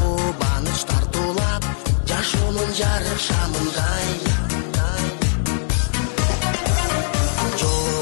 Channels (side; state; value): right; silent; digital silence